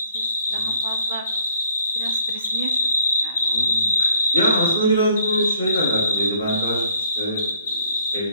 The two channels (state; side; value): inverted; both; correlation -0.64